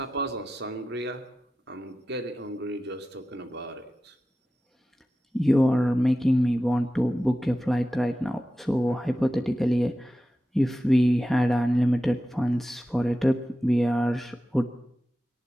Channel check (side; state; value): both; normal; correlation 0.94